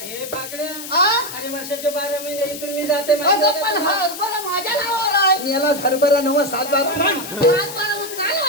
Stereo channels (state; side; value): noise; left; hiss, 10 dB below the sound